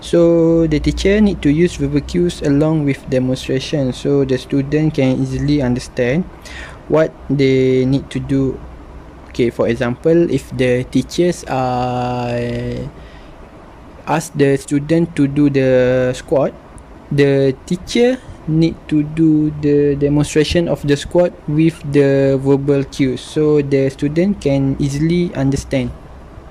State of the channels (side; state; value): both; identical; correlation 1.00